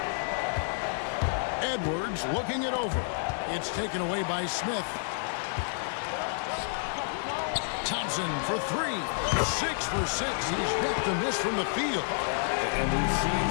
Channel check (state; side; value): silent; right; digital silence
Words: Edwards looking it over. It's taken away by Smith. Thompson for 3. 6 for 6. He's yet to miss from the field. And we've seen